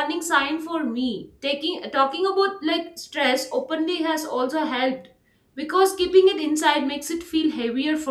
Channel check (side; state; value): both; identical; correlation 1.00